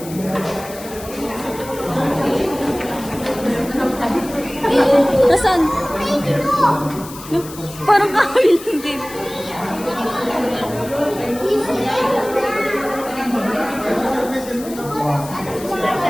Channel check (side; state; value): left; noise; hiss, 15 dB below the sound